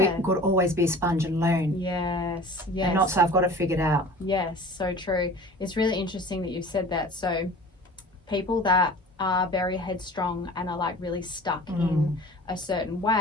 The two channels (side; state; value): both; normal; correlation 0.42